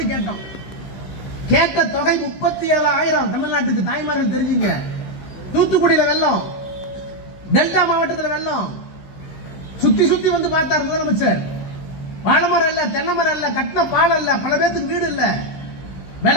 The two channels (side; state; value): right; late; 16 ms